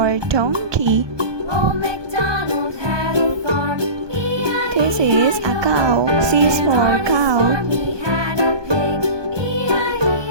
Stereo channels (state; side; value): late; left; 1.2 ms